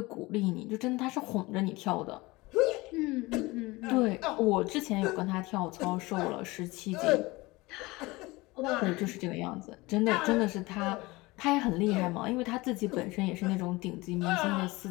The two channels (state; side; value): quieter; right; 22.0 dB